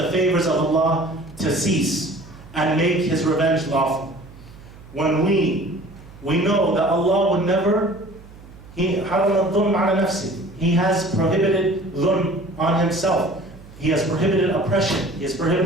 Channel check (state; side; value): noise; right; hum, 20 dB below the sound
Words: favors of Allah to cease and make His revenge lawful. When we know that Allah would never, He has prohibited dhulm on Himself. He has prohibited oppression. He has